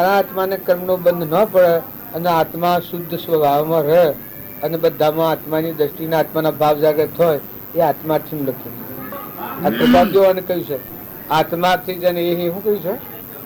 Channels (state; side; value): identical; both; correlation 1.00